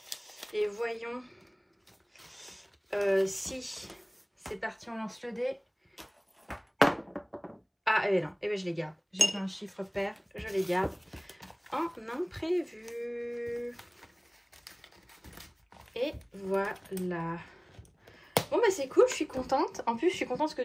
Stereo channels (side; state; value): both; identical; correlation 1.00